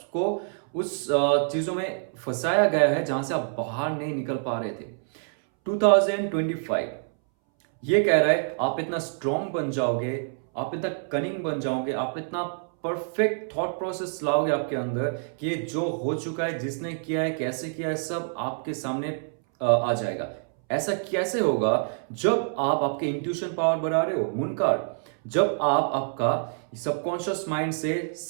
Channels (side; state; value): left; silent; 61 dB below the other